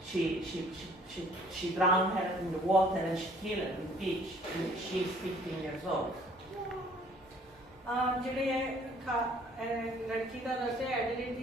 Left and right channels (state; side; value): normal; both; correlation 0.57